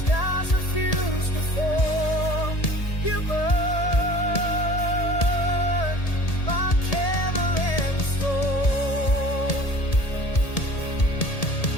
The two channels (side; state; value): right; late; 1.7 ms